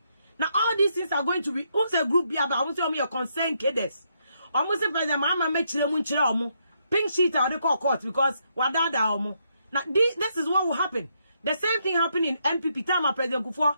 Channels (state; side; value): inverted; both; correlation -0.77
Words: Now all these things are going to be who's a group here, but I want to your concern cadets. Almost President Mama make chile pink sheet or they call court because wadada omo. Now this is what will happen. The same thing happened in MPP time of President Kufuor